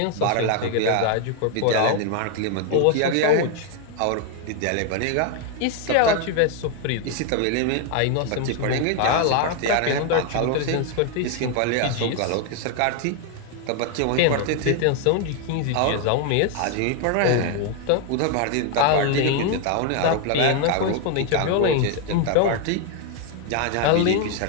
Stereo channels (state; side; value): different; both; correlation 0.01